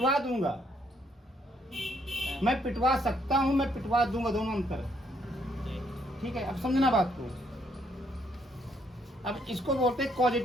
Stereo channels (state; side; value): normal; both; correlation 0.71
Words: दूंगा। मैं पिटवा सकता हूं, मैं पिटवा दूंगा, दोनों अंतर। ठीक है, अब समझना बात को। अब इसको बोलते हैं